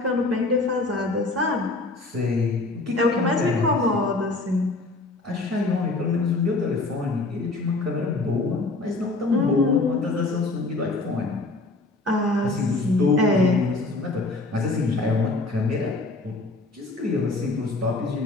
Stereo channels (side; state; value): right; quieter; 3.1 dB